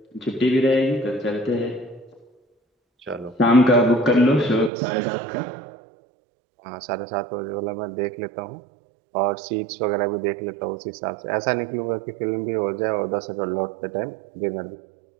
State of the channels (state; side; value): drops out; left; at 4.7 s